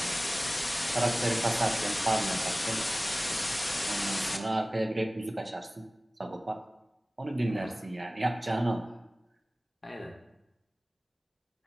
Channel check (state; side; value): normal; both; correlation 0.98